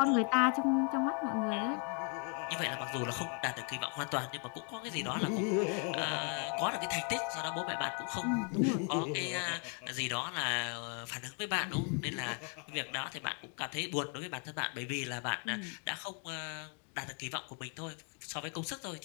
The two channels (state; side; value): quieter; right; 36.9 dB